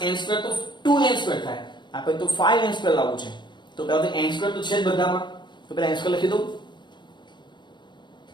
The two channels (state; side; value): late; right; 0.22 ms